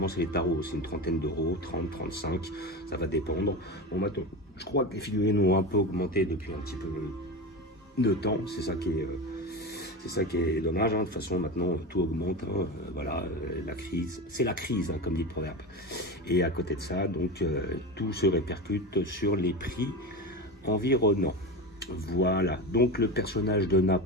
c'est les tarots, c'est une trentaine d'euros, 30, 35, ça va dépendre. Bon maintenant, je crois que les figurines ont un peu augmenté depuis un petit peu de temps, c'est ça qui est dommage, de toute façon maintenant tout augmente, voilà, la crise, c'est la crise, comme dit le proverbe. Et à côté de ça, donc tout se répercute sur les prix environnants. Voilà, donc le personnage de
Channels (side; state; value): both; normal; correlation 0.23